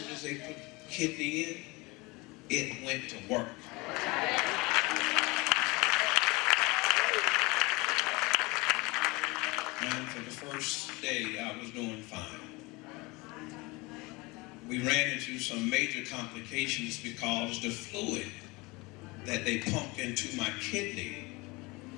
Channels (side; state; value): right; quieter; 24.5 dB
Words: as they put the kidney in, it went to work. And for the first day, I was doing fine. We ran into some major complications because the fluid that they pumped into my kidney